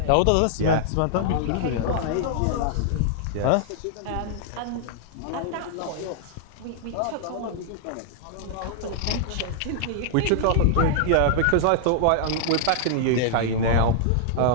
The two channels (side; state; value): both; different; correlation -0.01